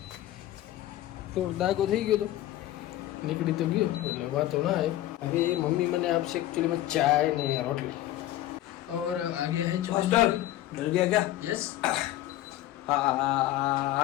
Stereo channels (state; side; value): quieter; right; 14.3 dB